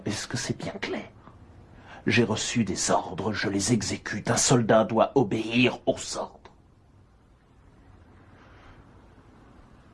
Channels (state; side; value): identical; both; correlation 1.00